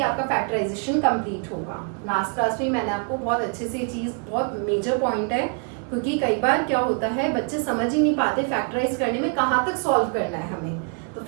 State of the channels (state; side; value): quieter; left; 38.6 dB